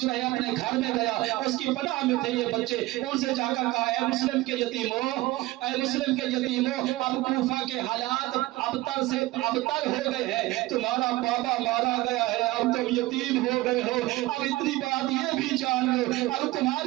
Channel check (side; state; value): left; quieter; 18.8 dB